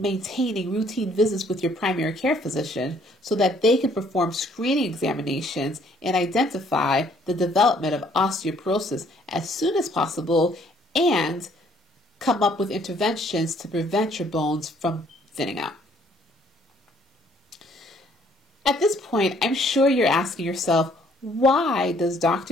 routine visits with your primary care physician so that they can perform screening examinations and identify the development of osteoporosis as soon as possible and come up with interventions to prevent your bones from thinning out. At this point, I'm sure you're asking yourself, why does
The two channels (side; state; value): both; normal; correlation 0.63